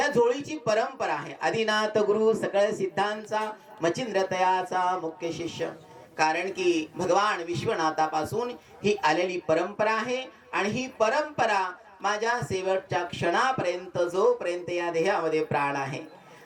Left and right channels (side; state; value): both; identical; correlation 1.00